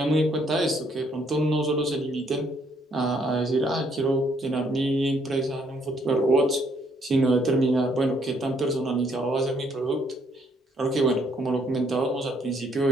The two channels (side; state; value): both; normal; correlation 0.68